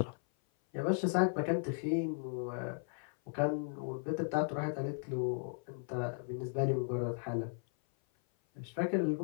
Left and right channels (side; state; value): right; silent; 54 dB below the other